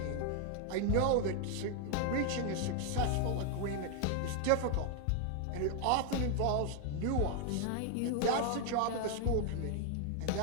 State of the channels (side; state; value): both; different; correlation 0.00